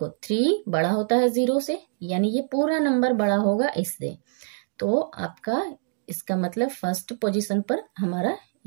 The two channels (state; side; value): silent; left; digital silence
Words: 3 बड़ा होता है 0 से, यानी ये पूरा नंबर बड़ा होगा इससे। तो आपका इसका मतलब फर्स्ट पोजीशन पर हमारा